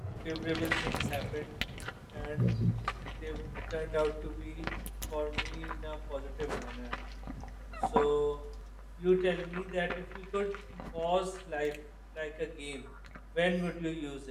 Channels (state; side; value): identical; both; correlation 1.00